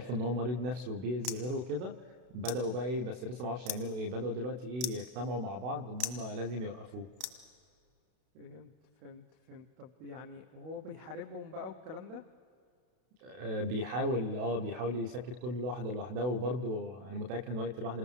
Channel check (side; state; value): left; late; 32 ms